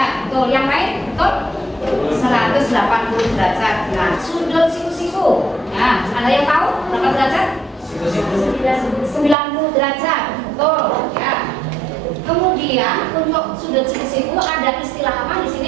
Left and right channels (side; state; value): left; drops out; at 9.3 s